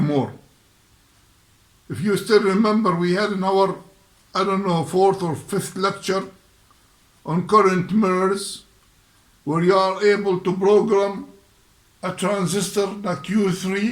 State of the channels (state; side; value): identical; both; correlation 1.00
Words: If you still remember, we had in our, 4th or 5th lecture on current mirrors, where you are able to program a transistor like